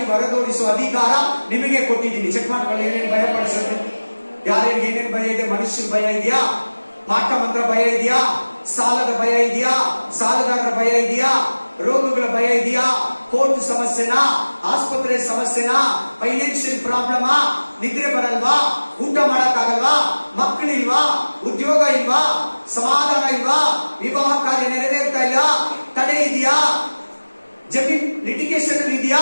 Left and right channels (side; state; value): both; inverted; correlation -1.00